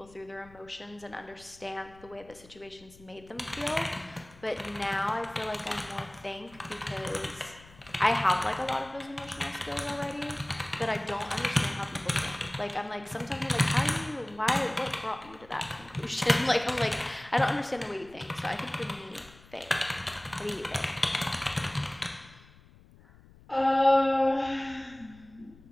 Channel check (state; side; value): noise; left; rumble, 23 dB below the sound